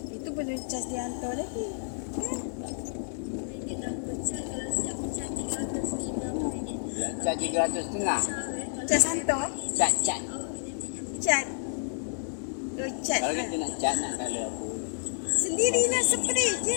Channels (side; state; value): right; silent; digital silence